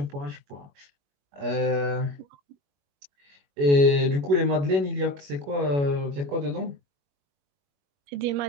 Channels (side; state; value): left; late; 21 ms